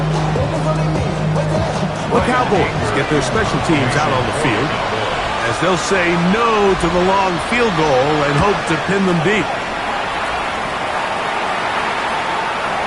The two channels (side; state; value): both; identical; correlation 1.00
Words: The Cowboys get their special teams out on the field as they'll say no to the long field goal and hope to pin them deep.